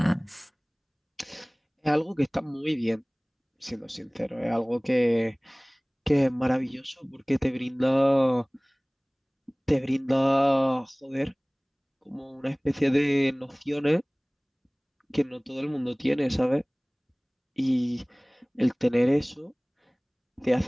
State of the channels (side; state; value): both; identical; correlation 1.00